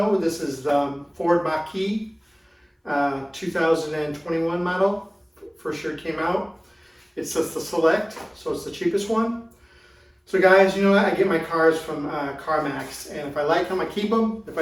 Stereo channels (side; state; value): both; identical; correlation 1.00